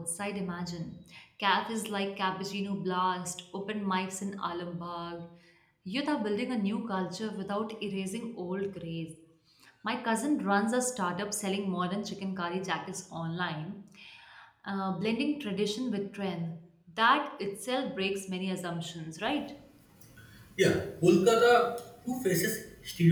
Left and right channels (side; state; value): both; identical; correlation 1.00